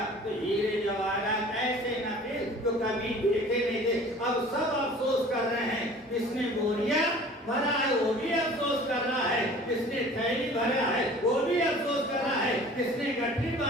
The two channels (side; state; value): both; normal; correlation 0.46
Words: تو ہیرے جواہرات ایسے نفیس تو کبھی دیکھے نہیں تھے۔ اب سب افسوس کر رہے ہیں، جس نے بوریا بھرا ہے وہ بھی افسوس کر رہا ہے، جس نے تھیلی بھرا ہے وہ بھی افسوس کر رہا ہے، جس نے گٹھی